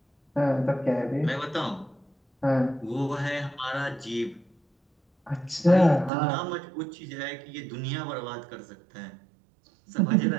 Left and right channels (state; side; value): drops out; left; at 6.1 s